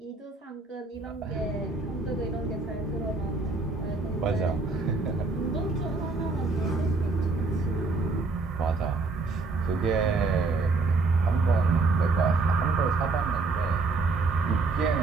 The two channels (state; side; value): quieter; left; 3.8 dB